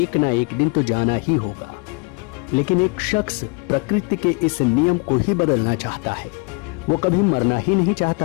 ना एक दिन तो जाना ही होगा, लेकिन एक शख्स प्रकृति के इस नियम को ही बदलना चाहता है। वो कभी मरना ही नहीं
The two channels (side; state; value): right; quieter; 30.5 dB